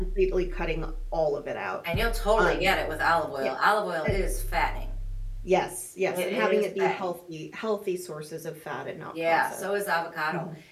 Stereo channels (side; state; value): both; identical; correlation 1.00